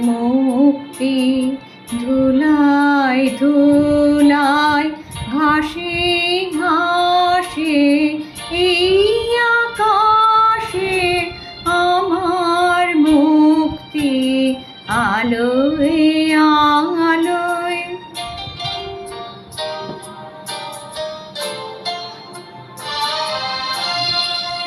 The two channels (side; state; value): both; identical; correlation 1.00